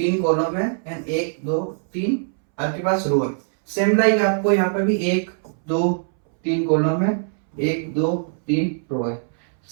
कॉलम है एंड एक दो तीन आपके पास रो है। सेम लाइक आपको यहाँ पे भी एक दो तीन कॉलम है, एक दो तीन रो है।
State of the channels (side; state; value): left; silent; 64 dB below the other